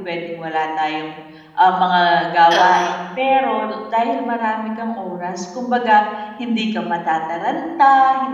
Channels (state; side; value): identical; both; correlation 1.00